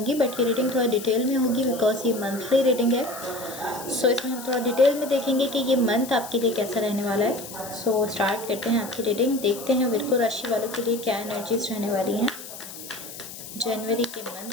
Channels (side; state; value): left; noise; hiss, 13 dB below the sound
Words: बट ये रीडिंग थोड़ा डिटेल में होगी बिकॉज ये मंथली रीडिंग है। सो इसमें हम थोड़ा डिटेल में देखेंगे कि ये मंथ आपके लिए कैसा रहने वाला है। सो स्टार्ट करते हैं आपकी रीडिंग। देखते हैं विर्गो राशि वालों के लिए क्या एनर्जीज रहने वाली हैं जनवरी के